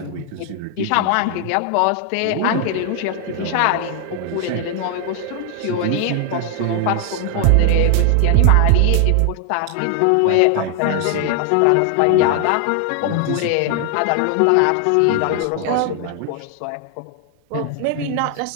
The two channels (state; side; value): different; both; correlation 0.00